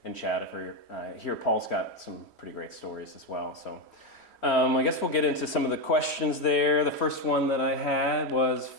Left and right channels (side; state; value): right; late; 3.1 ms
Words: and chat. Here, Paul's got some pretty great stories as well. So I guess we'll get into some of the questions there. The first one that I had was